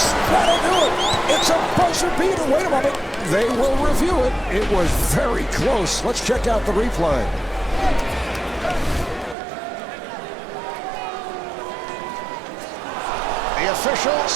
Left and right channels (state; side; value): drops out; left; at 9.3 s